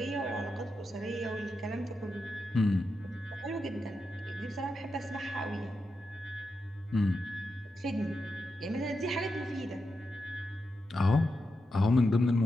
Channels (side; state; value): both; normal; correlation 0.87